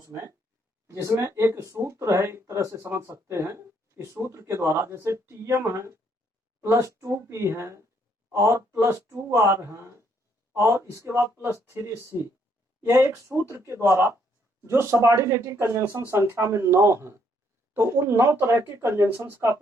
जिसमें एक सूत्र है, एक तरह से समझ सकते हैं इस सूत्र के द्वारा, जैसे टीएम है प्लस 2p है और प्लस 2r है और इसके बाद प्लस 3c, यह एक सूत्र के द्वारा जो सबऑर्डिनेटिंग कंजंक्शन संख्या में 9 है, तो उन 9 तरह के कंजंक्शंस का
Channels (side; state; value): both; normal; correlation 0.70